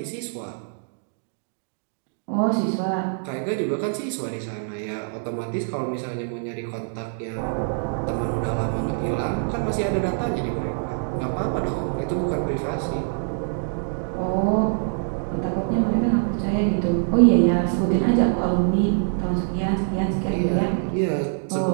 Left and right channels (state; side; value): silent; left; digital silence